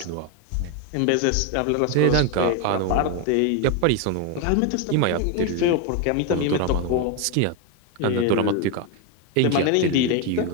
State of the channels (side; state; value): both; different; correlation 0.01